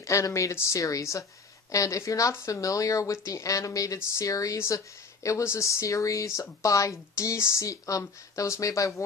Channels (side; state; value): right; quieter; 4.5 dB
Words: Animated Series. And if you're not familiar with the animated series, it was a series by DC, that was made by